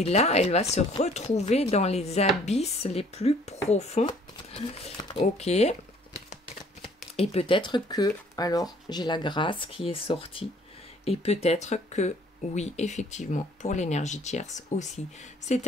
là, elle va se retrouver dans les abysses les plus profonds. Ok. Et peut-être que, alors, j'ai la grâce qui est sortie. Et peut-être que, oui, effectivement, pour l'énergie tierce aussi.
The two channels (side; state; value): both; normal; correlation 0.58